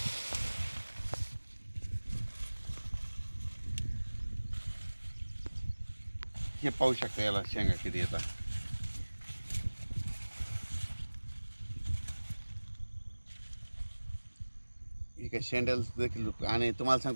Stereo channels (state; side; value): inverted; both; correlation -1.00